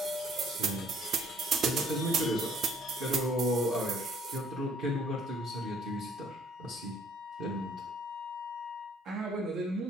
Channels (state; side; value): normal; both; correlation 0.61